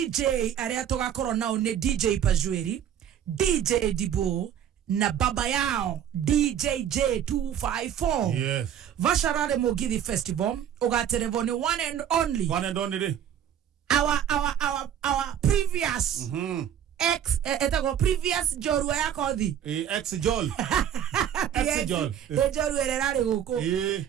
aria tugakorwo nao ni DJ Pajweri, DJ Dibo na baba yao DJJ254. Yes. Vasha Rally Mugithi Festival ugaterevoni one and only our previous previous jorua yako thi ex-jol jorua ererari guku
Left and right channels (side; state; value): left; quieter; 9.7 dB